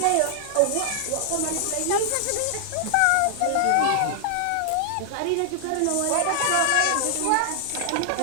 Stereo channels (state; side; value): different; both; correlation 0.00